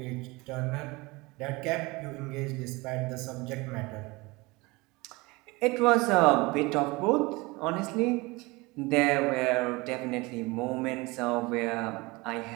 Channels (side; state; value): left; quieter; 23.6 dB